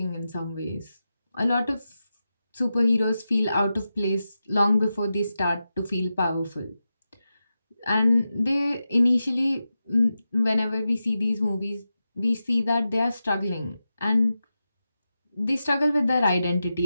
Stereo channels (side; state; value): both; inverted; correlation -0.91